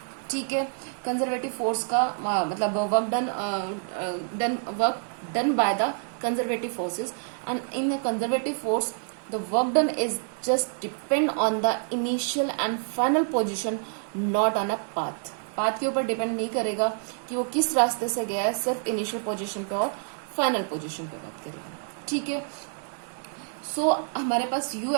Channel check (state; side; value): silent; left; 58 dB below the other